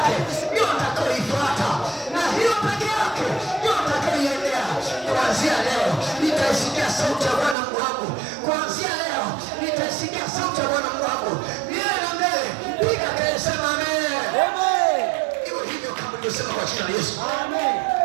ndio nitakayoifuata, na hiyo peke yake ndio nitakayoiendea. Kuanzia leo nitaisikia sauti ya Bwana Mungu wangu. Kuanzia leo nitaisikia sauti ya Bwana Mungu wangu. Milele na milele. Piga kelele, sema amen. Amen. Iwe hivyo kama nilivyosema kwa jina la Yesu. Amen.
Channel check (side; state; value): left; drops out; at 7.6 s